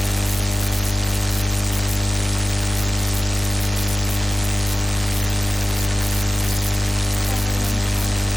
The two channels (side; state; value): both; normal; correlation 0.92